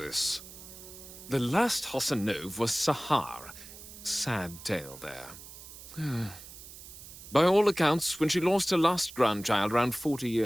The last Hassanove was Sahar. Sad tale there. By all accounts, when she lost her last grandchild around 40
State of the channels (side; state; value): right; noise; hiss, 16 dB below the sound